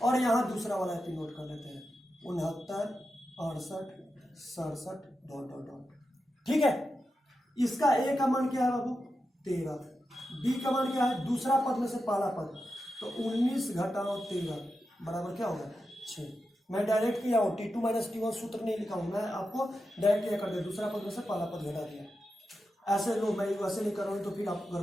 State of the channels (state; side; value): normal; both; correlation 0.89